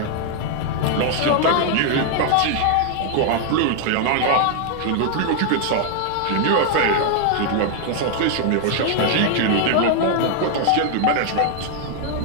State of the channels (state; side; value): different; both; correlation 0.00